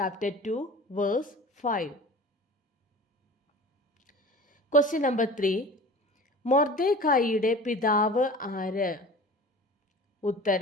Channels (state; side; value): normal; both; correlation 0.39